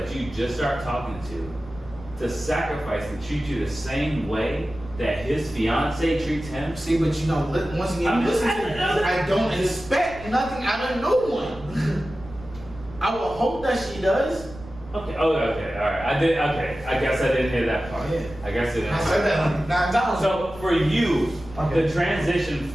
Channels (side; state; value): right; noise; rumble, 17 dB below the sound